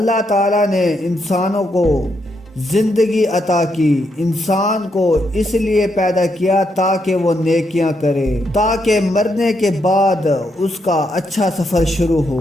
تعالیٰ نے انسانوں کو زندگی عطا کی، انسان کو اس لیے پیدا کیا تاکہ وہ نیکیاں کرے، تاکہ مرنے کے بعد اس کا اچھا سفر شروع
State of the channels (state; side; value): normal; both; correlation 0.79